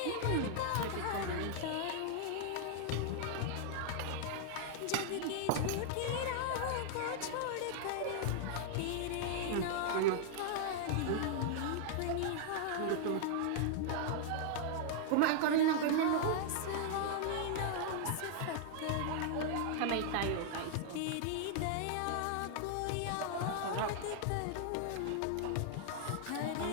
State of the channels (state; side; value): different; both; correlation -0.01